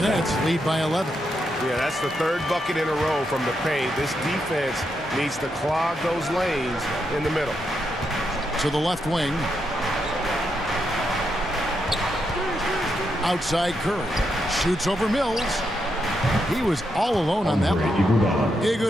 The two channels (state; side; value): normal; both; correlation 0.82